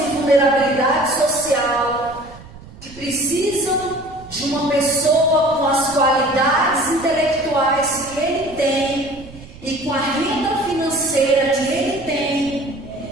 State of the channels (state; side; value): noise; right; rumble, 19 dB below the sound